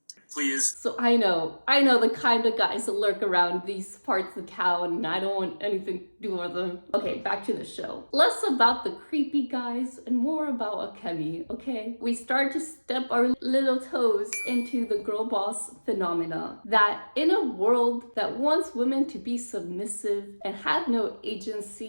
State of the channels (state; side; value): inverted; both; correlation -1.00